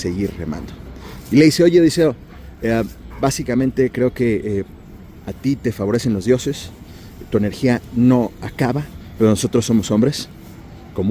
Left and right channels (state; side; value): identical; both; correlation 1.00